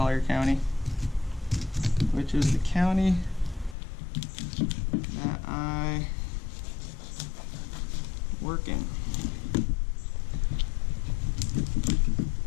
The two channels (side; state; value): right; drops out; at 3.8 s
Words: County, which is the county that I work in.